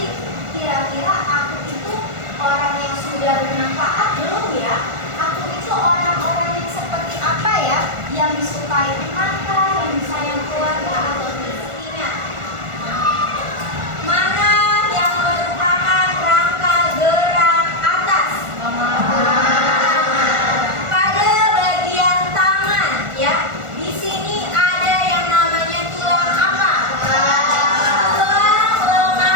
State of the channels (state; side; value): late; left; 1.4 ms